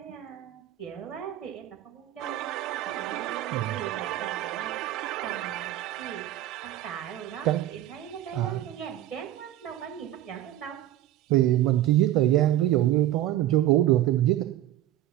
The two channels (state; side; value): quieter; left; 13.3 dB